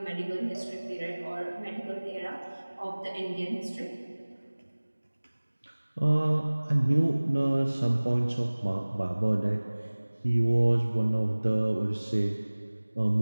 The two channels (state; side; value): inverted; both; correlation -1.00